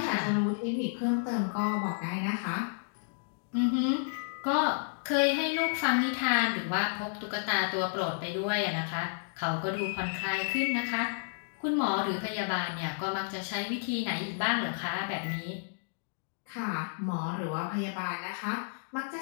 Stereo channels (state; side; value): silent; right; digital silence